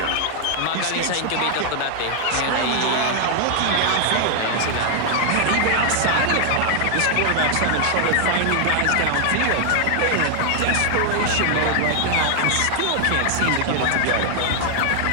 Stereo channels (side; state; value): both; different; correlation 0.00